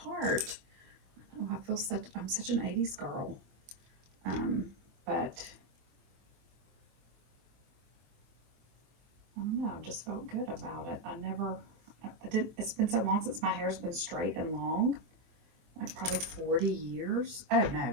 part. I'm such an 80s girl, but I don't know, I've just felt good about it. I didn't, it's been so long since my hair's been straight and long, like probably 40 years. Oh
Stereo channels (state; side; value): late; left; 24 ms